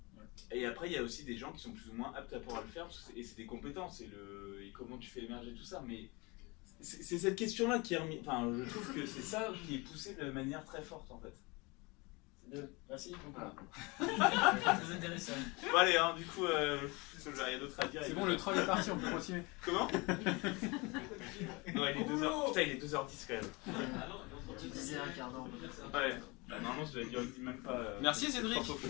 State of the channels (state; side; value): quieter; right; 26.3 dB